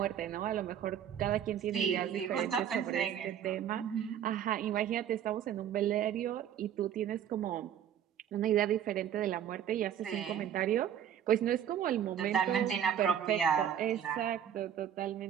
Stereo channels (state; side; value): quieter; left; 9.6 dB